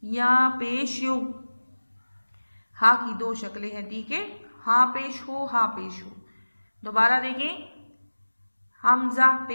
या पेश यो। हा की दो शक्लें हैं। ठीक है, हा पेश हो, हा पेश हो। दोबारा देखें, हमज़ा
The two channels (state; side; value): inverted; both; correlation -1.00